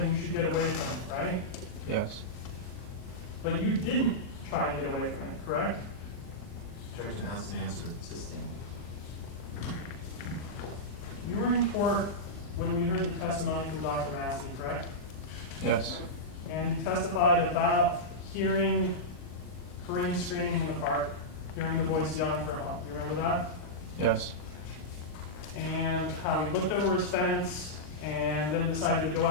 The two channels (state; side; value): late; right; 39 ms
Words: you should get away from it, right? Yes. But you didn't try and get away from it, correct? Objection, asked and answered. Sustained. You were in court when we heard the testimony from Dr. Massey, correct? Yes. And you testified about hearing Karim screaming in the park, hearing the voice yelling for help. You remember that? Yes. And how he looked over his fence and then decided to go